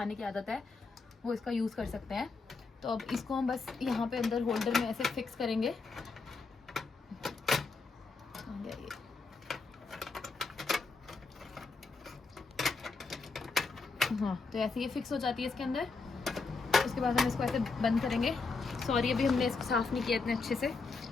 की आदत है वो इसका यूज़ कर सकते हैं। तो अब इसको हम बस यहाँ पे अंदर होल्डर में ऐसे फिक्स करेंगे। हाँ, तो ऐसे ये फिक्स हो जाती है इसके अंदर। उसके बाद हम इसको ऐसे बंद करेंगे। सॉरी अभी हमने इसको साफ़ नहीं किया इतने अच्छे से।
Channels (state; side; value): quieter; right; 4.2 dB